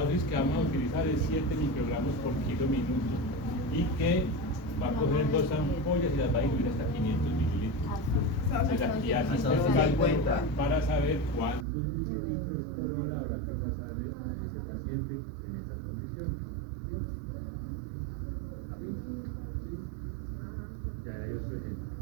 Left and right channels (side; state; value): left; drops out; at 11.7 s